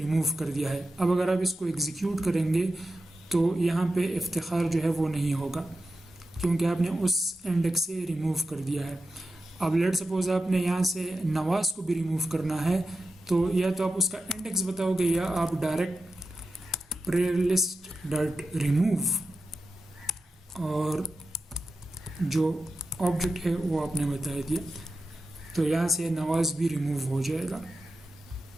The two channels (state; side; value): normal; both; correlation 0.91